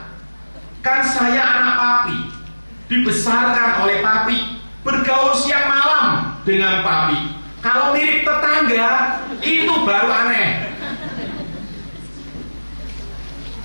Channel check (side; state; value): both; inverted; correlation -1.00